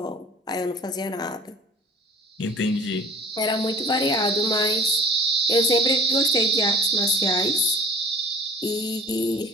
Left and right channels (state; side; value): normal; both; correlation 0.46